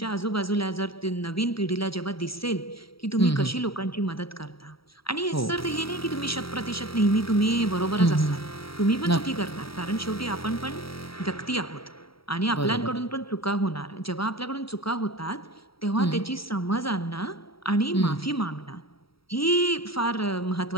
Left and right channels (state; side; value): late; right; 0.75 ms